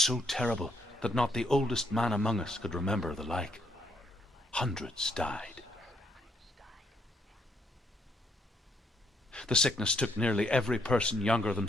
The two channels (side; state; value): both; normal; correlation 0.73